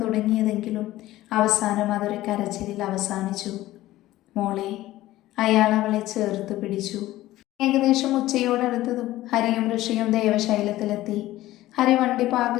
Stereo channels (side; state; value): right; quieter; 15.8 dB